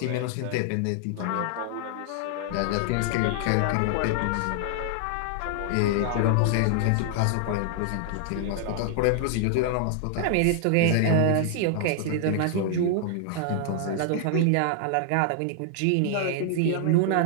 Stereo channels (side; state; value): both; different; correlation 0.00